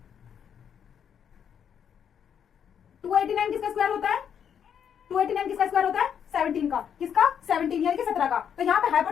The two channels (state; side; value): quieter; right; 8.2 dB